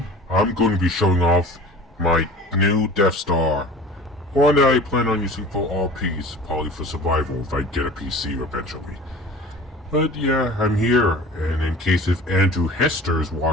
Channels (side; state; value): both; normal; correlation 0.41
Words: I'm going to be showing off my new Death Star. One that I plan on using for RPs, probably for survival if I get a PC eventually. But yeah, I'm here, and in case if Andrew Hester is